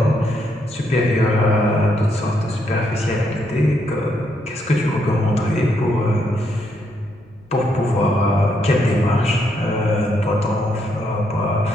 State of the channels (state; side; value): noise; left; rumble, 28 dB below the sound